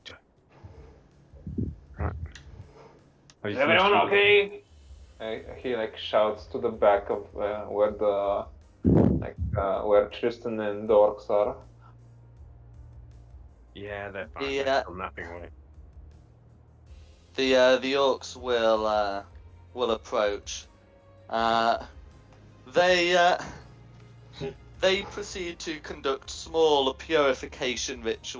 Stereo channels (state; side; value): identical; both; correlation 1.00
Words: Are Is you everyone finished with it? okay? He like shouts to the back of where the where Tristan and the orcs are. Yeah, they're fine. The They're still napping away. the orcs will approach. They they proceed to conduct small purification